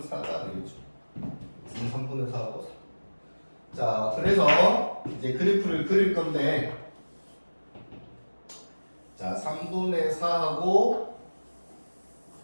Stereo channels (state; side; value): inverted; both; correlation -1.00